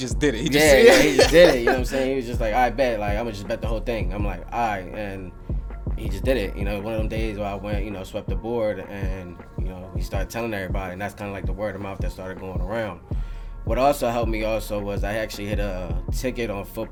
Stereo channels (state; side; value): identical; both; correlation 1.00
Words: did it. He just did it. You know what I'm saying? He was just like, I bet. Like, I'm gonna just bet the whole thing. I'm like, all right. And he just did it. One of them days where I went, swept the board, and he started telling everybody, and that's kind of like the word of mouth that started going around. What also helped me was I actually hit a ticket on